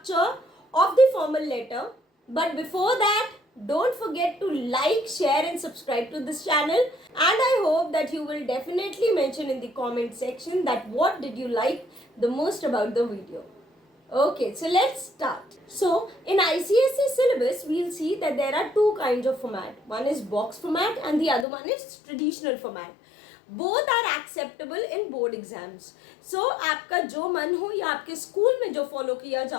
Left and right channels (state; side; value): drops out; right; at 21.5 s